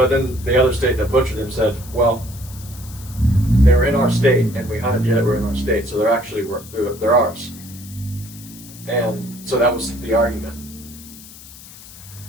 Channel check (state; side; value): noise; left; hiss, 18 dB below the sound